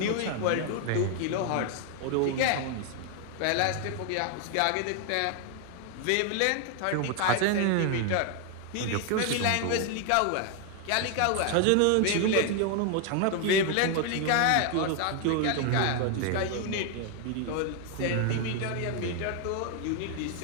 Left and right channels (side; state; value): both; different; correlation 0.00